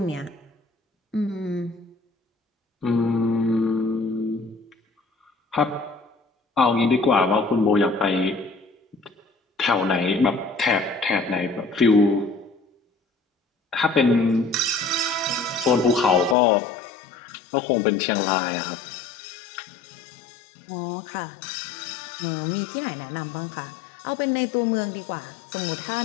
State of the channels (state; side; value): drops out; right; at 16.4 s